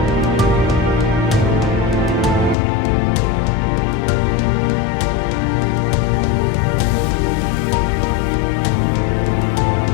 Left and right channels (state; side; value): drops out; right; at 2.6 s